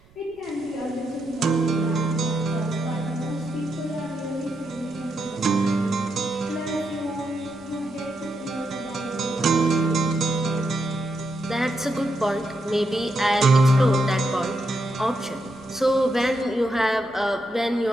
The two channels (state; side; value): noise; right; rumble, 29 dB below the sound